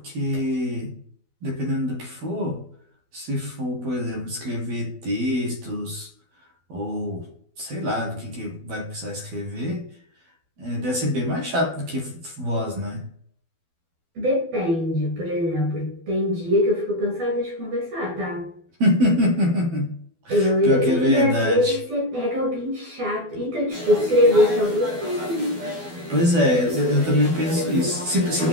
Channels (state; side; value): late; left; 12 ms